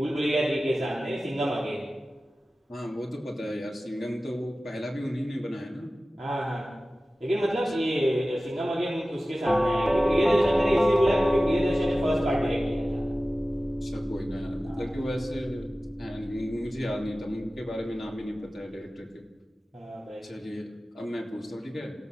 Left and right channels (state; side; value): normal; both; correlation 0.96